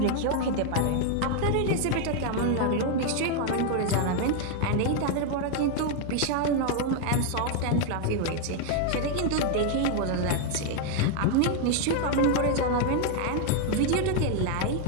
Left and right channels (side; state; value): both; different; correlation 0.00